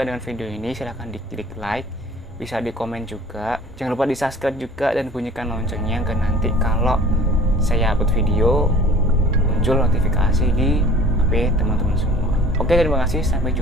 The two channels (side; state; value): both; normal; correlation 0.47